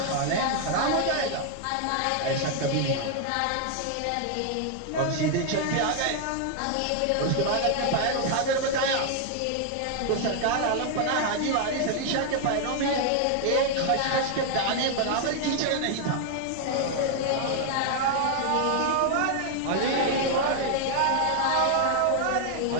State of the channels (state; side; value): different; both; correlation 0.00